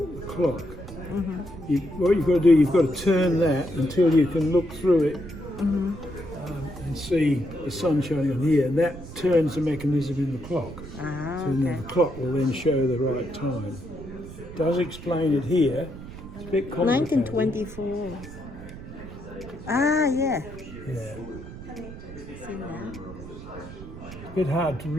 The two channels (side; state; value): right; noise; rumble, 13 dB below the sound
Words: clock. What you've got to do, you've got to turn that until you can look through it and see the sun shining on here. And that turns the mechanism in the clock. Ah, So then the clock will then show the right time. Does explain it here. It's a bit complicated. 1924. Ah, yeah. Yeah. See that? It's a bit hard to